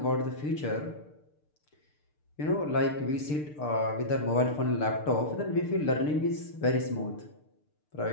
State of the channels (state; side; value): late; right; 6.7 ms